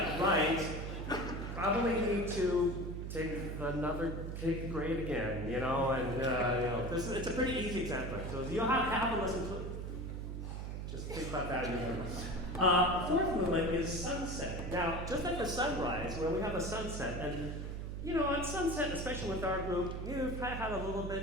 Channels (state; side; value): noise; right; hum, 5 dB below the sound